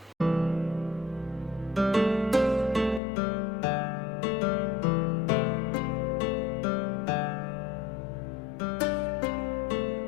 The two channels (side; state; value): right; drops out; at 3.0 s